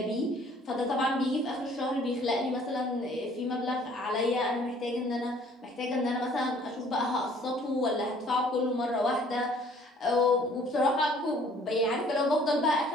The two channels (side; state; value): both; normal; correlation 0.57